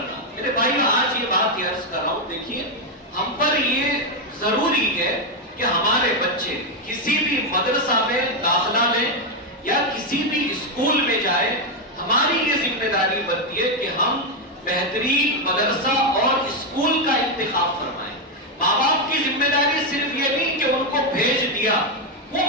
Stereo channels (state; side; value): normal; both; correlation 0.04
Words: میرے بھائیوں آج یہ بات عرض کر رہا ہوں، دیکھیے ہم پر یہ ضروری ہے کہ ہمارے بچے کسی بھی مدرسہ میں داخلہ لیں یا کسی بھی اسکول میں جائیں، ہماری یہ ذمہ داری بنتی ہے کہ ہم بہترین مدرسہ اور اسکول کا انتخاب فرمائیں. ماں باپ کی ذمہ داری صرف یہ نہیں کہ ان کو بھیج دیا، وہ